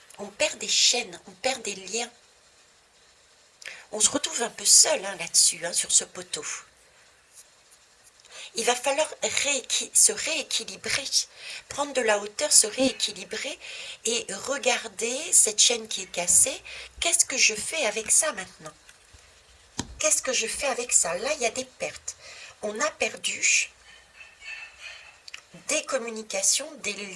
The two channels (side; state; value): both; identical; correlation 1.00